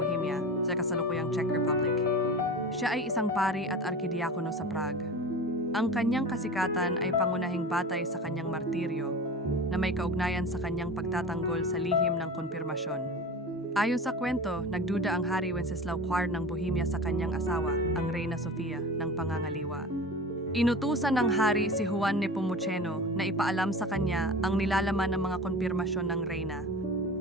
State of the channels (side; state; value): both; normal; correlation 0.33